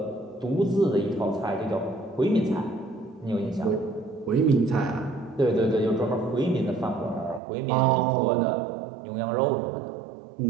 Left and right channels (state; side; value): drops out; left; at 7.4 s